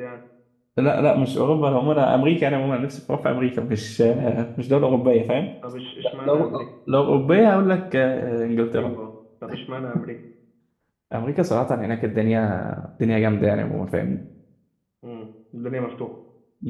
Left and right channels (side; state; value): both; identical; correlation 1.00